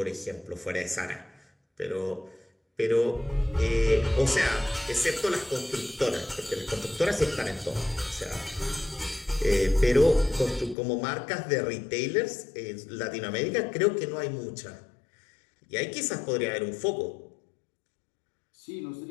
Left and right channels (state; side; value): drops out; right; at 10.8 s